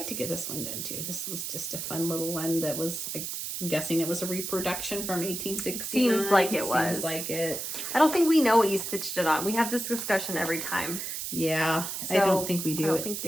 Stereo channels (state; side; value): noise; right; hiss, 5 dB below the sound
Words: to get this one done too. This was just a fun little one that was, I'm guessing it was a reproduction from 1869. Seems like it was. Seems like it. I don't think we know what you stitched it on. We have this discussion every time. Yeah, So, I don't think we do. I don't think